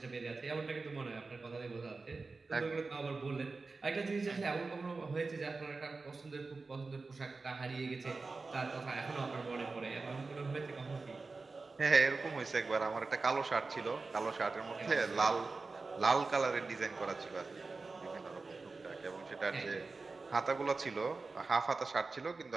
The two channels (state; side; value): quieter; left; 3.9 dB